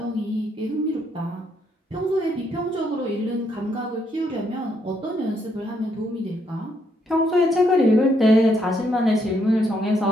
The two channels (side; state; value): both; normal; correlation 0.74